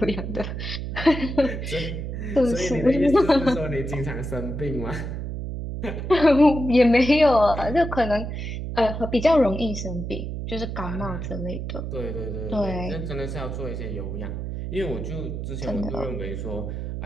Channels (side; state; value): right; noise; hum, 5 dB below the sound